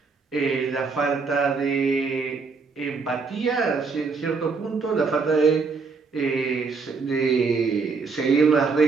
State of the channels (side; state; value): left; quieter; 4.7 dB